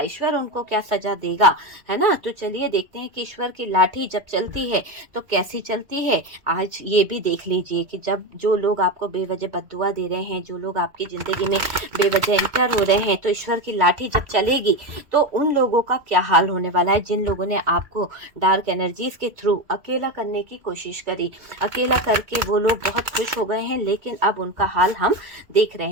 उनको क्या सजा देगा, है ना। तो चलिए देखते हैं कि ईश्वर की लाठी जब चलती है तो कैसी चलती है। आज ये भी देख लीजिए कि जब जो लोग आपको बेवजह बद्दुआ दे रहे हैं, जो लोग आपकी जिंदगी में बेवजह एंटर हो रहे हैं, तो ईश्वर की लाठी जब चलेगी तो उन लोगों का क्या हाल होने वाला है, जिन लोगों ने आपको डार्क एनर्जीज के थ्रू अकेला करने की कोशिश करी। अकेला करके वो लोग बहुत खुश हो गए हैं, लेकिन अब उनका हाल हम देख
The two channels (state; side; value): late; left; 1.9 ms